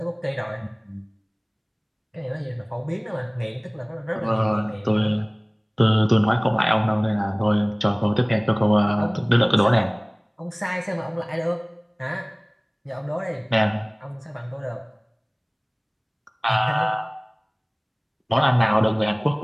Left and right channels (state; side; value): identical; both; correlation 1.00